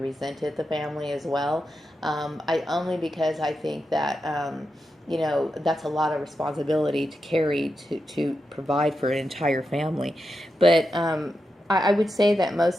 resented the family as well. Only because I think that, you know, that's a lot of responsibility to carry to provide for an entire family. But I would say that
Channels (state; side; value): normal; both; correlation 0.88